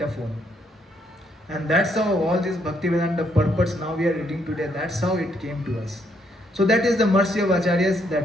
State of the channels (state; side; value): normal; both; correlation 0.72